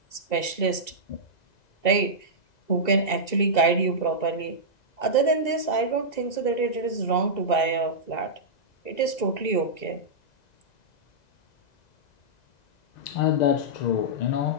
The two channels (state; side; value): late; right; 1.9 ms